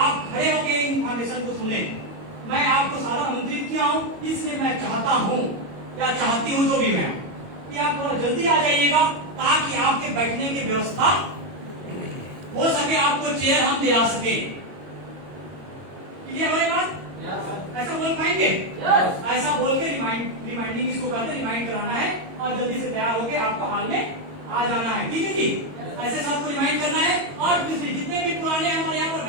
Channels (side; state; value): left; late; 22 ms